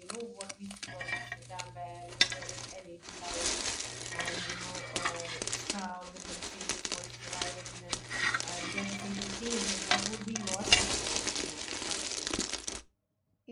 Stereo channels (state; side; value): identical; both; correlation 1.00